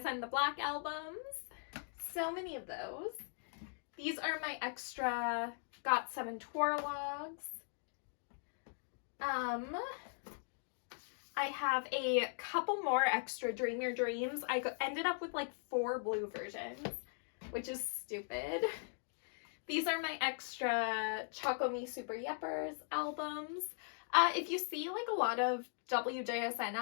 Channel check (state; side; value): silent; right; digital silence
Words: The Black albums. So many of those. These are my extra GOT7 Twirlogs. I have a couple more extra Dream Your Dreams. I ended up with like 4 blue versions, which is stupid. These are my extra Choco Me Super Yeppers albums. If you see like a lot of WJSN